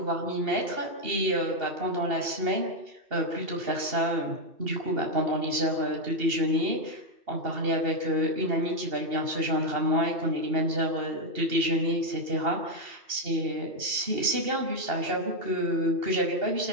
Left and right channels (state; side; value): late; left; 2.8 ms